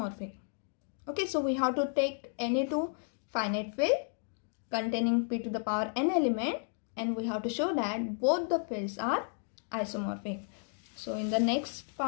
Okay, so we have to take any two finite field containing p to the power n element, and we have to show that both the fields are isomorphic. So in the next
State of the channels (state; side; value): silent; right; 56 dB below the other